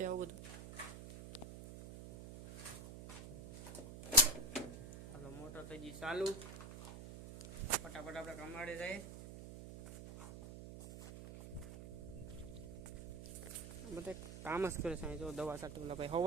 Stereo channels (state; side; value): noise; right; hum, 11 dB below the sound